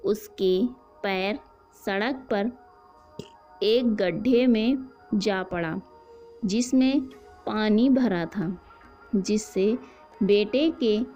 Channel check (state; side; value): identical; both; correlation 1.00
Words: उसके पैर सड़क पर एक गड्ढे में जा पड़ा जिसमें पानी भरा था, जिससे बेटे के